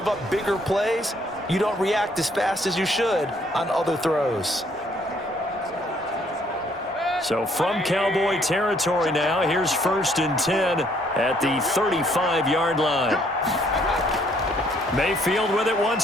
up bigger plays, you don't react as fast as you should on other throws. So from Cowboy territory now, here's 1st and 10 at the 35-yard line. Mayfield with it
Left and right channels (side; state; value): both; normal; correlation 0.65